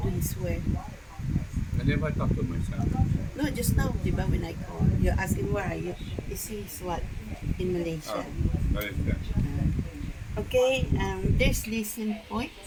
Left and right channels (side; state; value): both; identical; correlation 1.00